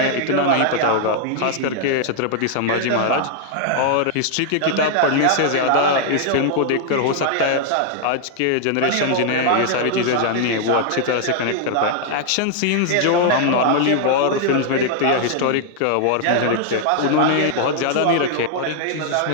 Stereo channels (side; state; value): both; different; correlation 0.00